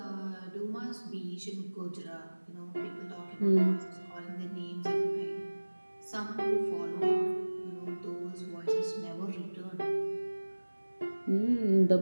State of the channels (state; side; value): inverted; both; correlation -1.00